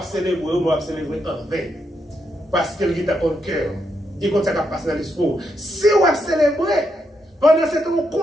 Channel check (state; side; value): normal; both; correlation 0.80